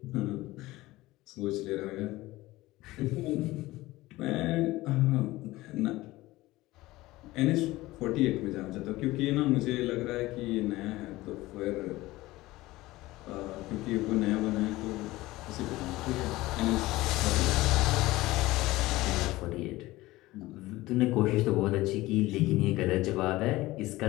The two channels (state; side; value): quieter; right; 18.6 dB